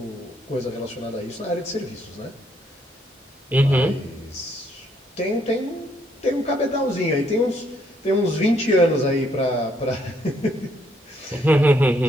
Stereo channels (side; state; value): both; normal; correlation 0.70